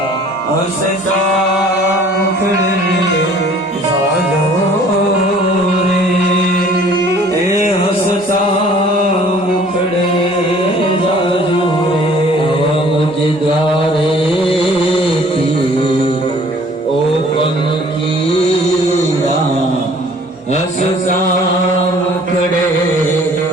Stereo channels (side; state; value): both; normal; correlation 0.54